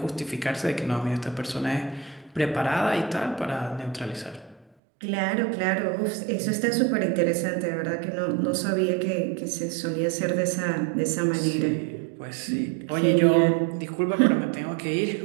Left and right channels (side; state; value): left; drops out; at 4.7 s